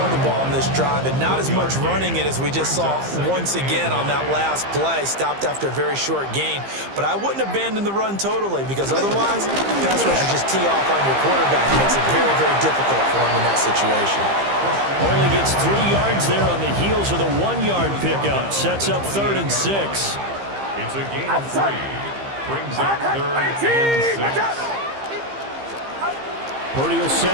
the ball on this drive, and not as much running it as we just saw once again on that last play, stopped after a very short gain. But I wouldn't abandon the run totally, because otherwise, pass rushers just tee off on your quarterback. It makes it very, very difficult for him in that situation. Only gets 3 yards there on the heels of the 1-yard pickup. Sets up 3rd and 6. It's a gain of 3. Brings up 3rd and 6. Purdy will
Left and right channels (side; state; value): left; late; 15 ms